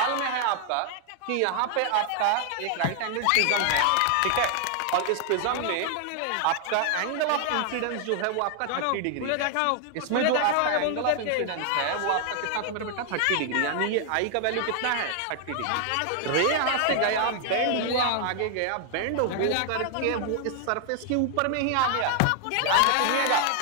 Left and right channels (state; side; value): different; both; correlation 0.00